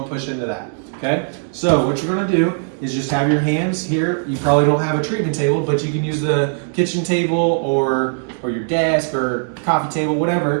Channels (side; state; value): left; silent; 66 dB below the other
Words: push into that, okay? So what you're gonna do is just have your hands here. You probably don't have a treatment table, but you can use the kitchen table or your desk or coffee table,